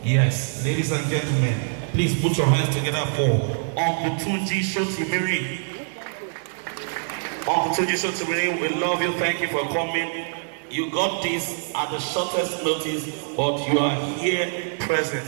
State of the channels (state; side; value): silent; left; 57 dB below the other